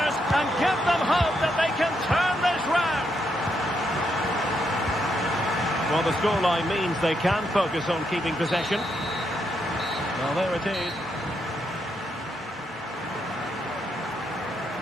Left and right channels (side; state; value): both; normal; correlation 0.79